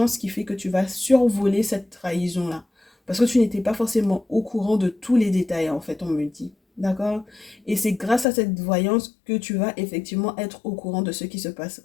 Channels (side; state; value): right; drops out; at 8.2 s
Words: qui fait que tu vas survoler cette trahison-là. Parce que tu n'étais pas forcément au courant de tous les détails, en fait, on me dit. D'accord? Et c'est grâce à cette voyance que tu vas effectivement être au courant de ce qui se passe